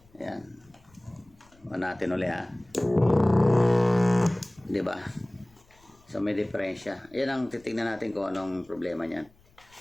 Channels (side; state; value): left; noise; rumble, 30 dB below the sound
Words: Ayan. O natin ulit diba? So may diferensya. Yan ang titignan natin kung anong problema niyan.